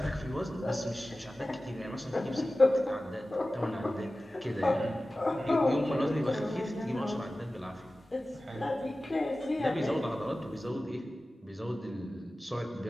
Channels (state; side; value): normal; both; correlation 0.96